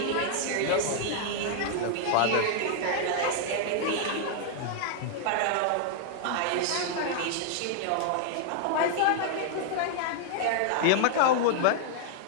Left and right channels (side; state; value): both; different; correlation -0.01